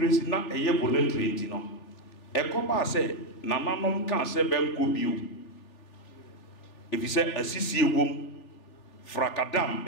na eye voluntary enti no ekoba se nananom kan se benko bio if you say asisi ewom frakadam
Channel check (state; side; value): late; right; 3.4 ms